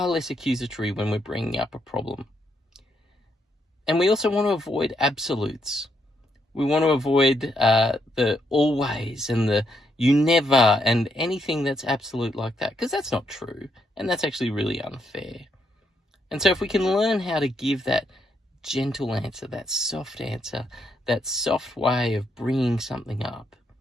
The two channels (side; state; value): both; normal; correlation 0.77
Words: less accusatory when we're bringing up a problem. And we also want to avoid absolutes. We want to avoid the always and the you never and anything that's absolute like that, because that's not true, and that's actually really unfair. And so if we can learn how to give that gentle answer, that soft way of bringing something up,